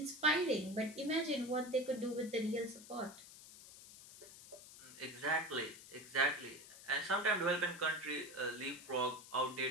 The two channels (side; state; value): left; noise; hiss, 17 dB below the sound